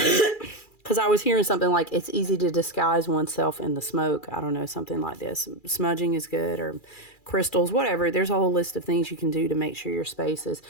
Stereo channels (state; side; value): late; right; 2.4 ms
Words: I was hearing something like it's easy to disguise oneself in the smoke. I don't know, something like this. Smudging is good, or crystals, whatever. There's a whole list of things you can do to make sure your space is.